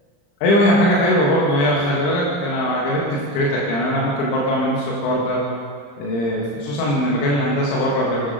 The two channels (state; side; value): late; right; 35 ms